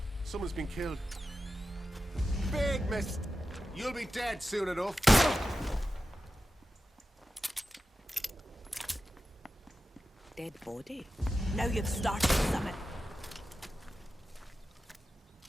Someone's been killed. Big mist! You'll be dead soon enough. Dead body? Now you've started something.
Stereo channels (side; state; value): both; normal; correlation 0.92